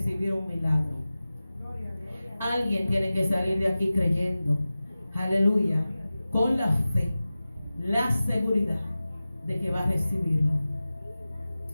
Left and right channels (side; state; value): both; inverted; correlation -0.96